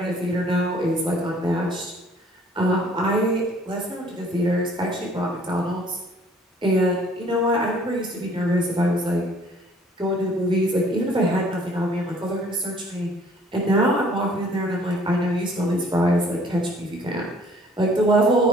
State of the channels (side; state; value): both; normal; correlation 0.57